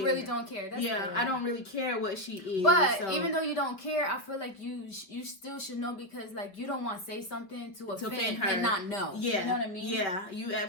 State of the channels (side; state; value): right; late; 5.3 ms